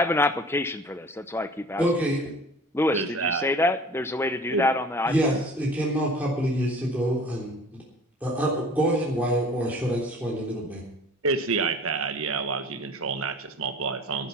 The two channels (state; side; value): normal; both; correlation 0.44